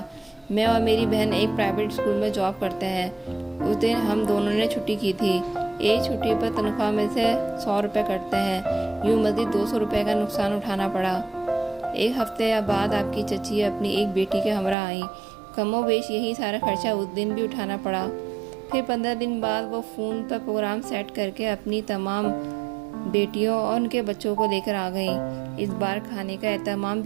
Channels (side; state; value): left; drops out; at 14.8 s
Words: میں اور میری بہن ایک پرائیویٹ اسکول میں جاب کرتے ہیں۔ اس دن ہم دونوں نے چھٹی کی تھی۔ ایک چھٹی پر تنخواہ میں سے 100 روپے کٹتے ہیں، یوں مزید 200 روپے کا نقصان اٹھانا پڑا۔ ایک ہفتے بعد آپ کی چچی اپنی ایک بیٹی کے ہمراہ آئیں۔ کم و بیش یہی سارا خرچہ اس دن بھی اٹھانا پڑا۔ پھر 15 دن بعد وہ فون پر پروگرام سیٹ کر کے اپنی تمام بیٹیوں اور ان کے بچوں کو لے کر آ گئیں۔ اس بار کھانے کا اہتمام